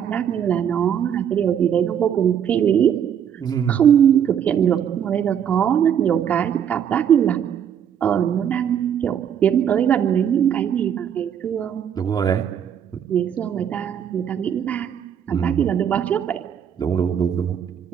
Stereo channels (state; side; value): quieter; left; 8.7 dB